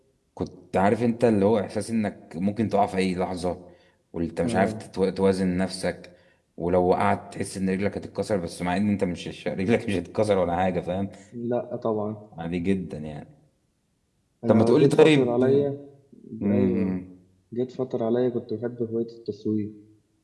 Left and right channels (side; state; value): both; identical; correlation 1.00